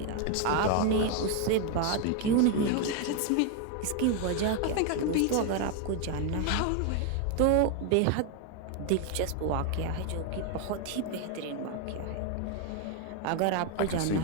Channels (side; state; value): both; different; correlation 0.01